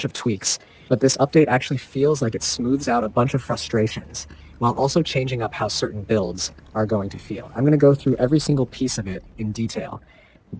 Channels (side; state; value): both; identical; correlation 1.00